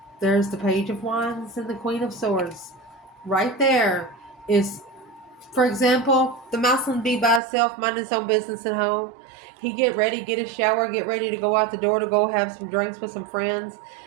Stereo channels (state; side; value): drops out; left; at 7.4 s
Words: There's the Page of Wands and the Queen of Swords. Right there is, for example, the masculine be by himself, mind his own business at home. He get ready, get a shower, get ready to go out the door to go have some drinks with some friends.